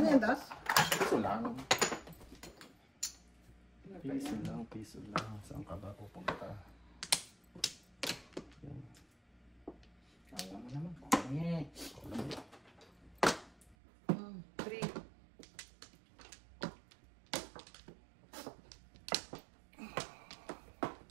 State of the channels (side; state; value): left; drops out; at 13.8 s